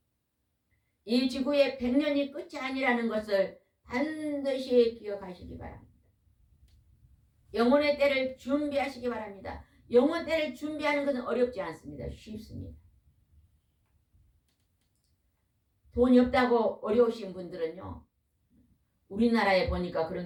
이 지구의 100년이 끝이 아니라는 것을 반드시 기억하시기 바랍니다. 영혼의 때를 준비하시기 바랍니다. 영혼 때를 준비하는 것은 어렵지 않습니다. 쉽습니다. 돈이 없다고 어려우신 분들은요. 우리나라에 보니까 그런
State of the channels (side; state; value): both; identical; correlation 1.00